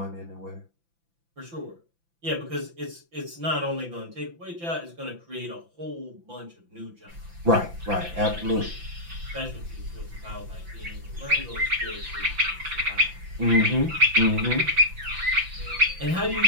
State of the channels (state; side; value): late; left; 5.9 ms